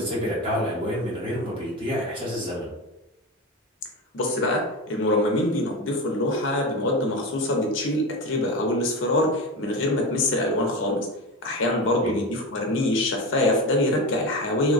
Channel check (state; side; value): normal; both; correlation 0.22